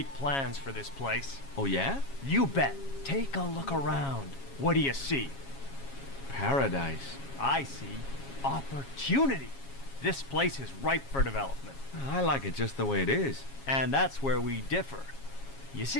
plans for this place. Oh, yeah? You bet. Take a look around. What do you see? Paradise. I see opportunity. This place is ripe for development. I like it just the way it is. And that's where we differ. You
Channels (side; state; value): right; late; 7.3 ms